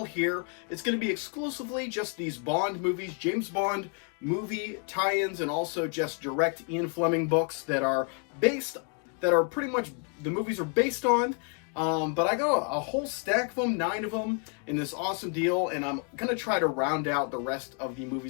here. It's going to be exclusively just these Bond movies, James Bond movie tie-ins, and also just direct Ian Fleming books that are pretty much the movies are based on. But I got a whole stack of them, 9 of them, in this awesome deal, and I'm going to try to round out the rest of the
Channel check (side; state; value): right; quieter; 38.4 dB